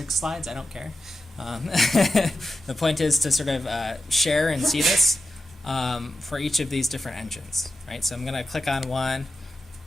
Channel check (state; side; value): normal; both; correlation 0.91